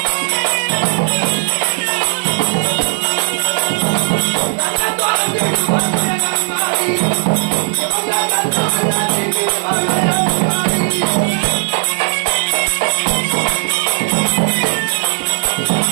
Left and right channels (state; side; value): silent; left; digital silence